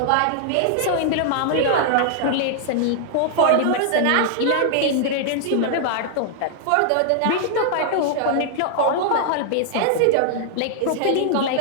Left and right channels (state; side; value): different; both; correlation -0.01